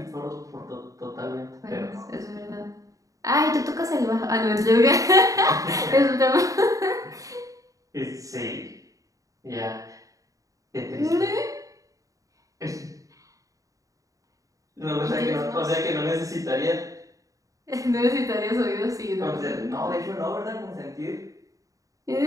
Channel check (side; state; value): left; late; 0.16 ms